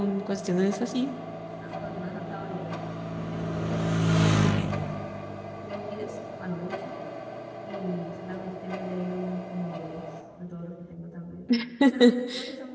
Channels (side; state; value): both; identical; correlation 1.00